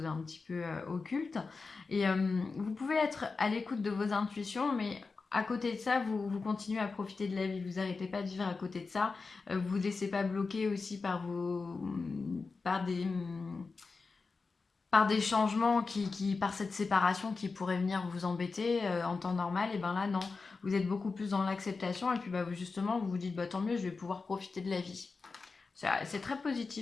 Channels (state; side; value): quieter; right; 4.3 dB